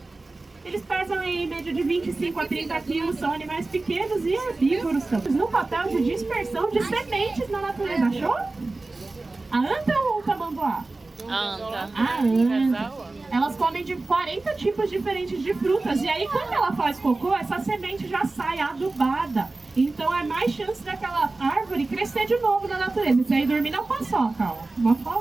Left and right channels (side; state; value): left; quieter; 3.3 dB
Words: Eles pesam em média de 25 a 30 quilos, são animais pequenos e herbívoros também. No papel de dispersão de sementes na natureza, achou? A anta ou o tamanduá? Anta. A anta. Elas comem de 40 tipos diferentes de frutas. E aí, quando ela faz cocô, essa semente já sai adubada. Então, é mais chance daquela árvore crescer de novo na natureza. Isso aí, dormir na paçoca, ó. Uma